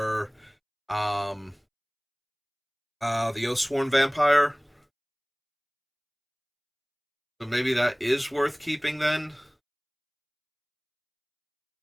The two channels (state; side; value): identical; both; correlation 1.00